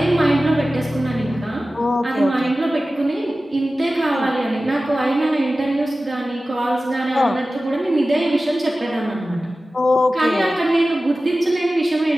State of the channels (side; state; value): both; normal; correlation 0.96